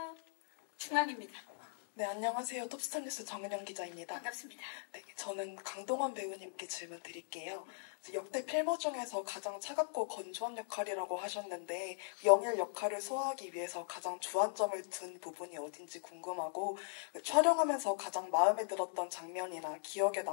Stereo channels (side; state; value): right; silent; digital silence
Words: 중앙입니다. 네, 안녕하세요. 톱스타뉴스 정은영 기자입니다. 반갑습니다. 네, 저는 강동원 배우님께 질문 드릴게요. 역대 필모 중에서 가장 차갑고 건조한 역할이라고 하셨는데 영일 역할을 소화하기 위해서 가장 주안점을 둔 부분이 어딘지 궁금하고 촬영하면서 가장 마음에 들었던 장면이나 기억에